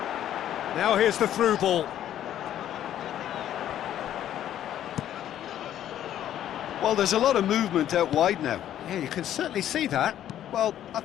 Now here's the through ball. Well, there's a lot of movement out wide now. Yeah, you can certainly see that. Well, I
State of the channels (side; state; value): right; quieter; 11.3 dB